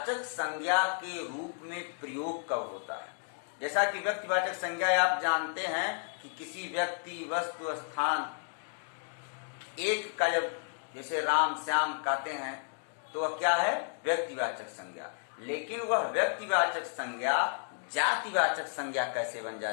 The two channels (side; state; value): right; silent; 56 dB below the other